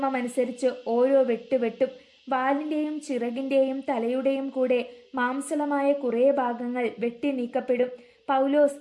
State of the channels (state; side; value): identical; both; correlation 1.00